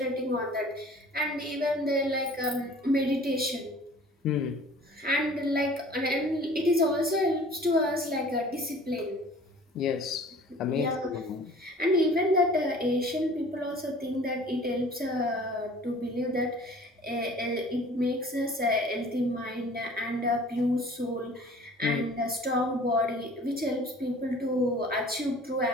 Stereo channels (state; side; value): normal; both; correlation 0.48